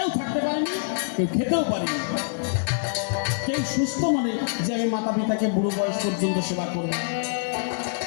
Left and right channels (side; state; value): right; silent; 57 dB below the other